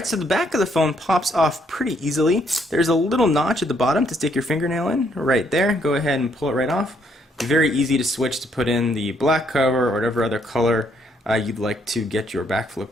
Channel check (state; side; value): normal; both; correlation 0.71